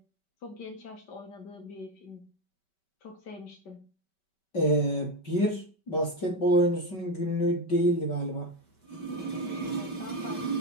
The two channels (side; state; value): right; late; 5.2 ms